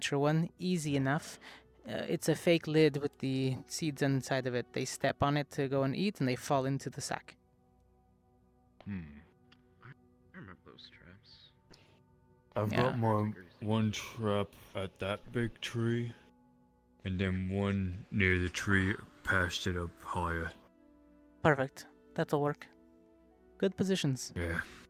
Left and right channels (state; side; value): identical; both; correlation 1.00